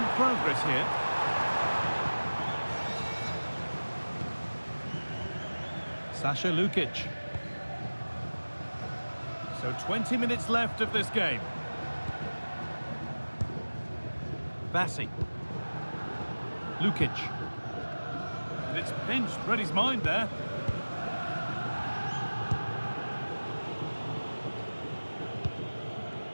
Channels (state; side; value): inverted; both; correlation -1.00